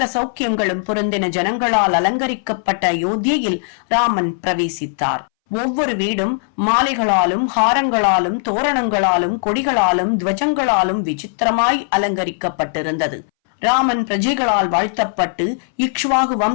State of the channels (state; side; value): silent; right; 64 dB below the other